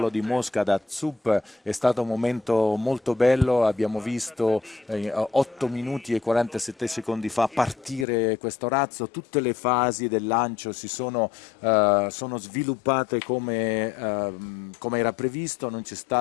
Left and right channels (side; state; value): right; drops out; at 8.1 s